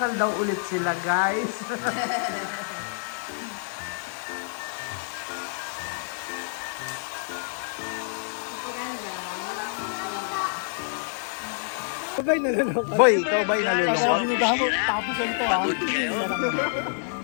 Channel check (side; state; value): right; silent; digital silence